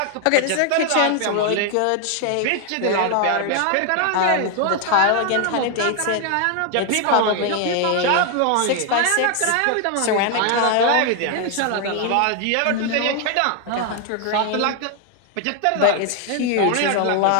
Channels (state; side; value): different; both; correlation 0.00